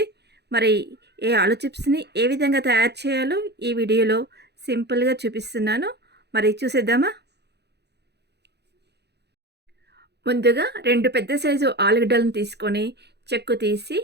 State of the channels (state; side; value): late; left; 0.49 ms